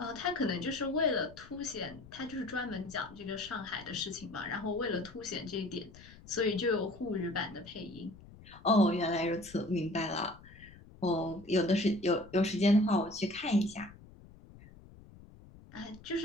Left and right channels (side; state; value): left; noise; rumble, 20 dB below the sound